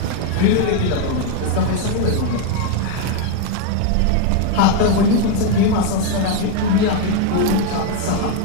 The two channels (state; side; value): different; both; correlation 0.01